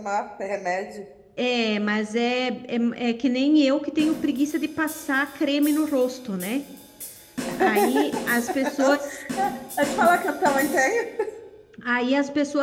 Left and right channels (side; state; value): both; identical; correlation 1.00